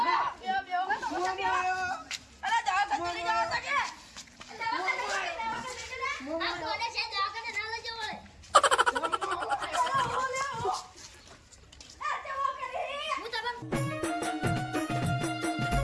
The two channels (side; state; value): both; identical; correlation 1.00